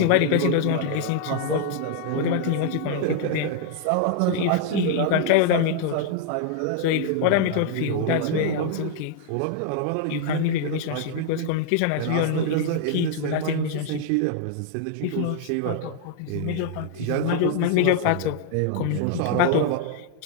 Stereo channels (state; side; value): different; both; correlation 0.00